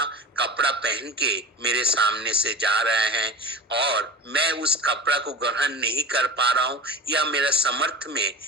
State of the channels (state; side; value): normal; both; correlation 0.31